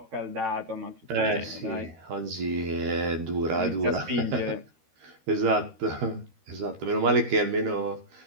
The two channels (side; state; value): left; late; 13 ms